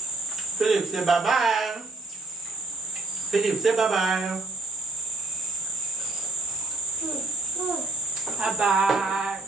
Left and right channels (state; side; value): quieter; left; 3.3 dB